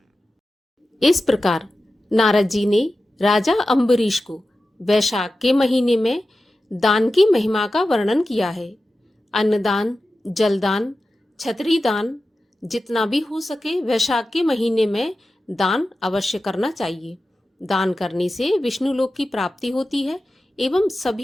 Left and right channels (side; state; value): both; normal; correlation 0.93